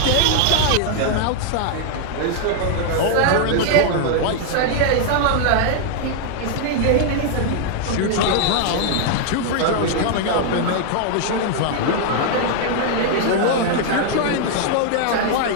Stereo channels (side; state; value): both; different; correlation 0.00